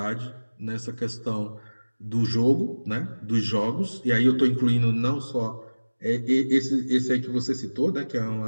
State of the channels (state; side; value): inverted; both; correlation -1.00